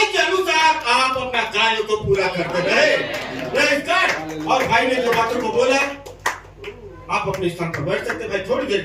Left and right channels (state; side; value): identical; both; correlation 1.00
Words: के अनुसार आप अपना कार्य को पूरा करते रहे। Praise God. और भाई ने जो बातों को बोला, आप अपने स्थान पर बैठ सकते भाई थोड़ी देर